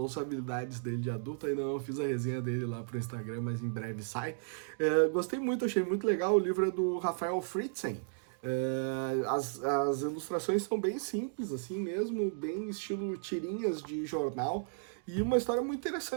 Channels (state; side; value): silent; left; digital silence